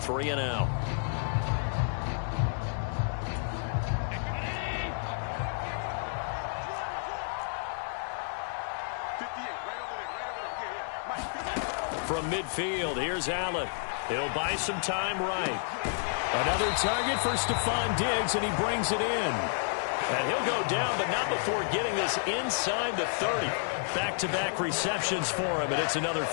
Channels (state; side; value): silent; right; digital silence